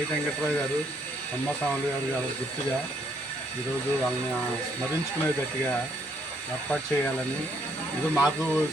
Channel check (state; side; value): normal; both; correlation 0.70